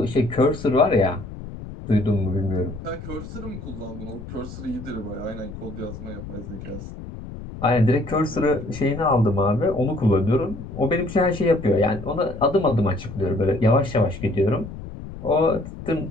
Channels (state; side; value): noise; left; rumble, 11 dB below the sound